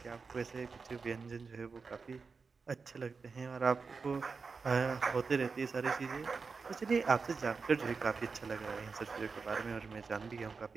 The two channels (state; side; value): quieter; left; 4.8 dB